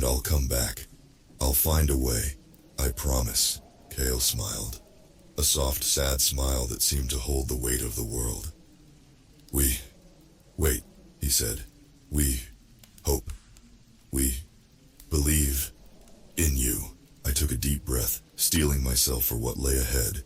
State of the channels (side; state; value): both; identical; correlation 1.00